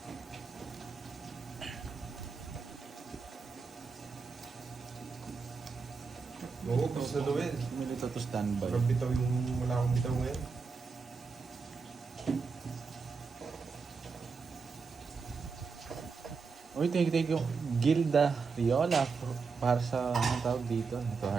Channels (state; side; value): quieter; left; 4.9 dB